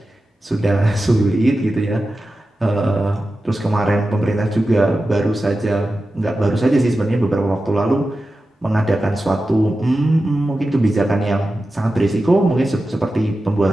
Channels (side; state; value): both; normal; correlation 0.93